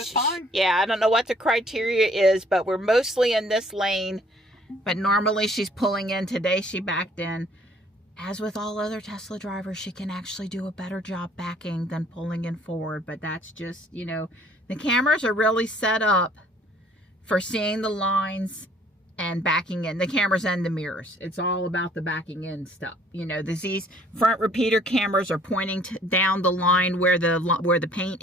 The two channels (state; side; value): normal; both; correlation 0.58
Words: fine. Yeah, I don't know what the criteria is, but we're mostly in this lane. But normally she's pulling in. Today she backed in. As with all other Tesla drivers, she can actually do a better job backing than pulling in forward. But that's just, you know, the cameras are really set up for seeing the lines and backing in. The cameras and the mirrors. It's all about the backing in stuff. You know, these front repeater cameras are pointing down the line where the paint